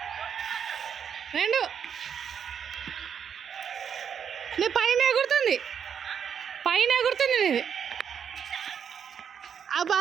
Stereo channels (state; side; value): quieter; left; 7.7 dB